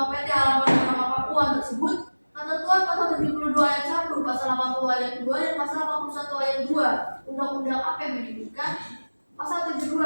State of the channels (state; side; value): inverted; both; correlation -1.00